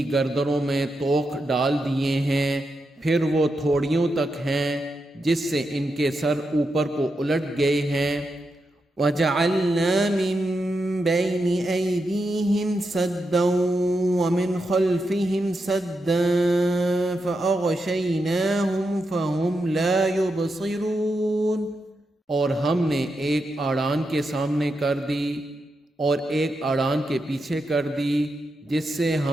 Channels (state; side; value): normal; both; correlation 0.86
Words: گردنوں میں طوق ڈال دیے ہیں، پھر وہ تھوڑیوں تک ہیں جس سے ان کے سر اوپر کو الٹ گئے ہیں۔ وَجَعَلْنَا مِن بَيْنِ أَيْدِيهِمْ سَدًّا وَمِنْ خَلْفِهِمْ سَدًّا فَأَغْشَيْنَاهُمْ فَهُمْ لَا يُبْصِرُونَ، اور ہم نے ایک اڑان کے سامنے کر دی اور ایک اڑان کے پیچھے کر دی، جس سے